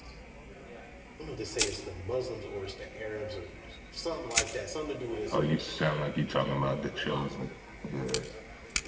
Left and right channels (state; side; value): identical; both; correlation 1.00